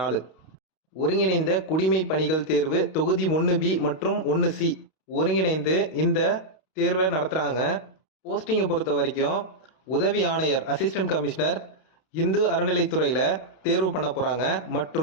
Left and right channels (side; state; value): right; late; 32 ms